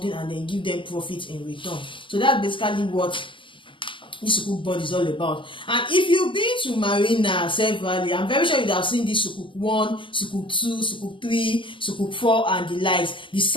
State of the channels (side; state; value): right; late; 0.25 ms